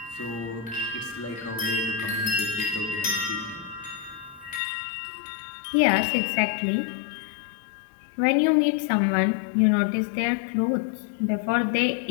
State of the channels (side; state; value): right; drops out; at 4.6 s